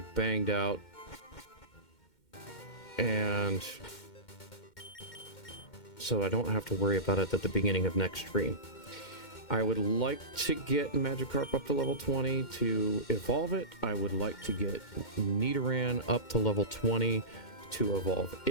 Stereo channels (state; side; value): late; right; 2.1 ms